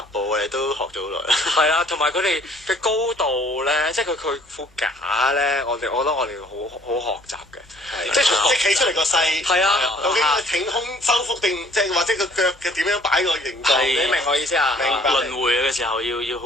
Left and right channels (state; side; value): normal; both; correlation 0.57